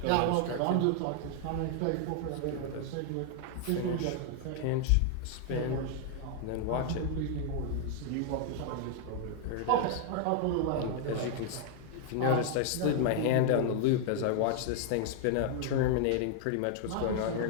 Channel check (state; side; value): different; both; correlation 0.00